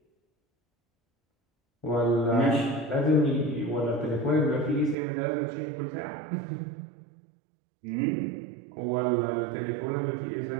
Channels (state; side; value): drops out; left; at 5.0 s